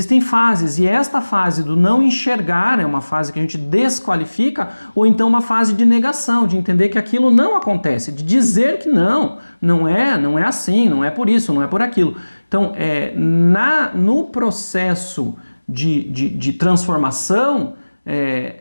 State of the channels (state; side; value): inverted; both; correlation -1.00